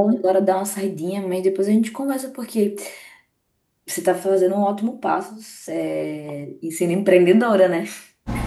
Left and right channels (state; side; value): identical; both; correlation 1.00